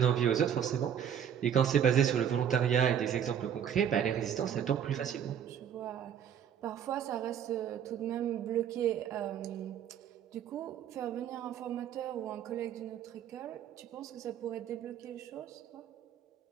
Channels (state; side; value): quieter; left; 8.9 dB